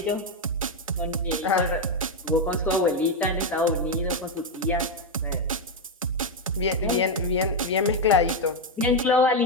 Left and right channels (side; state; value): both; normal; correlation 0.04